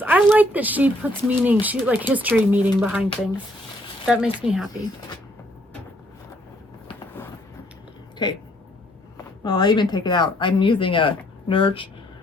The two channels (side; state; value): both; normal; correlation 0.67